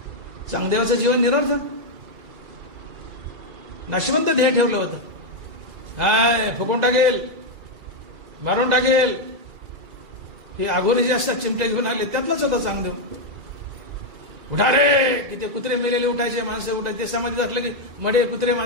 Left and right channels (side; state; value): left; late; 2.3 ms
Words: चांगदेवाचं जीवन निरर्थक, नाशवंत ध्येय ठेवलं होतं. हाय फुकून टाकेल, मारून टाकेल, हे आघोरी जे असतात चिमट्या घेऊन आले त्यातलाच होता चांगदेव. उठा रे, की ते कुत्रे मेलेले उठायचे, माणसं उठायचे. ते समाधीत असलं की मडे कुत्रे